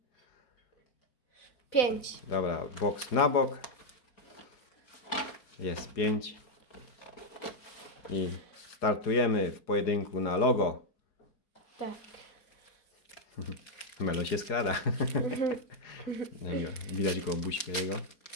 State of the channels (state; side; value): late; right; 4.8 ms